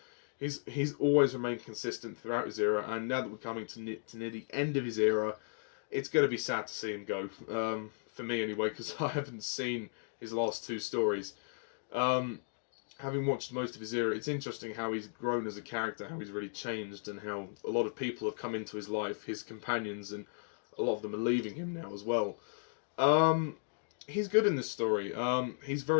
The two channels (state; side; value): silent; right; digital silence